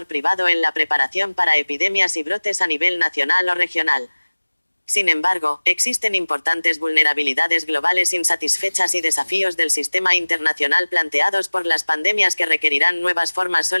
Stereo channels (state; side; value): inverted; both; correlation -1.00